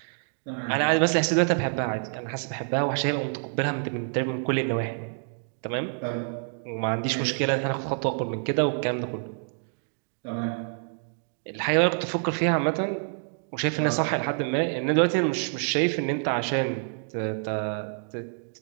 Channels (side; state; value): left; silent; 57 dB below the other